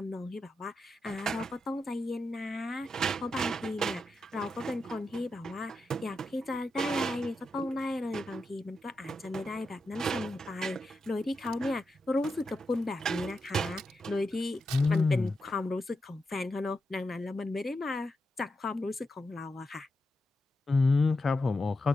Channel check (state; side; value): normal; both; correlation 0.87